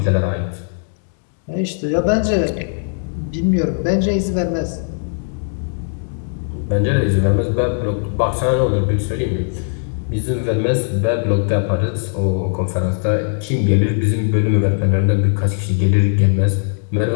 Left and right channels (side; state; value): right; silent; digital silence